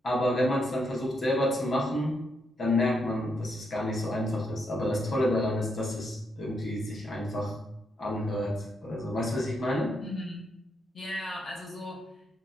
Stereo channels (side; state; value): both; normal; correlation 0.79